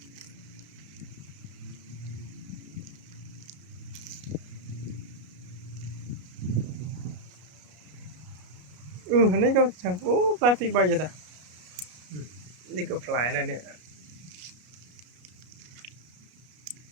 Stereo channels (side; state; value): left; late; 33 ms